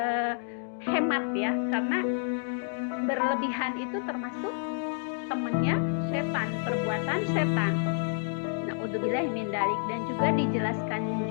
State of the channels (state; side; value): silent; right; 58 dB below the other